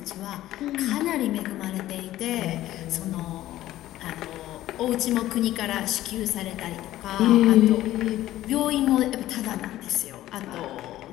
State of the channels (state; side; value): quieter; right; 14.5 dB